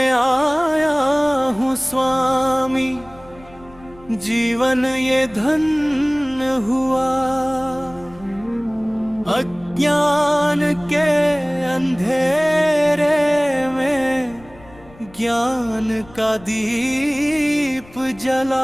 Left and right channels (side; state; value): left; noise; rumble, 24 dB below the sound